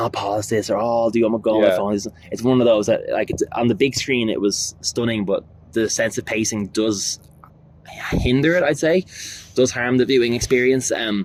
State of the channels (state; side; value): identical; both; correlation 1.00